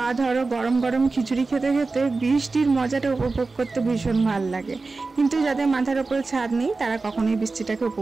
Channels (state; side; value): quieter; left; 3.8 dB